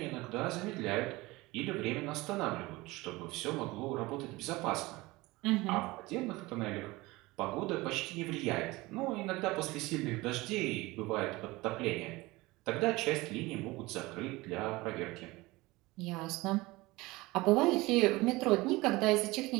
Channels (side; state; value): left; quieter; 21.2 dB